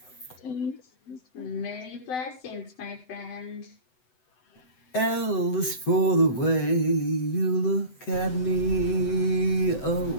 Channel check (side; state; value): right; late; 7.9 ms